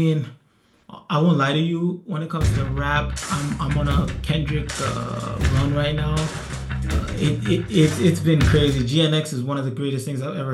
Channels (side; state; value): both; identical; correlation 1.00